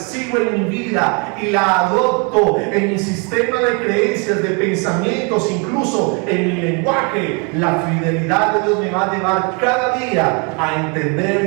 en mi vida y la adopto en mi sistema de creencias, de pensamientos, incluso en mi lenguaje, la fidelidad de Dios me va a llevar cada día a entender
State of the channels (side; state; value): left; quieter; 34.1 dB